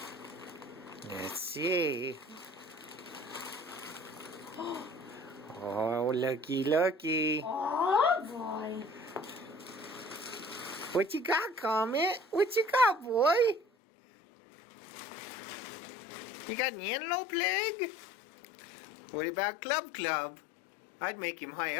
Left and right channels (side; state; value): right; drops out; at 13.6 s